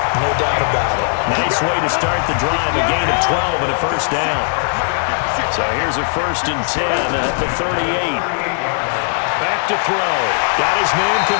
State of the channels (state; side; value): silent; right; digital silence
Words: No doubt about it. Nice way to start the drive. A gain of 12 and a first down. So here's a 1st and 10 at the 38. Back to throw. Got his man